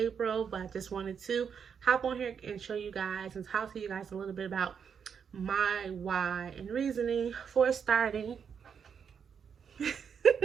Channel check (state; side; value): quieter; left; 7.0 dB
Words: but I just wanted to hop on here and show you guys and talk to you guys a little bit about my why and reasoning for starting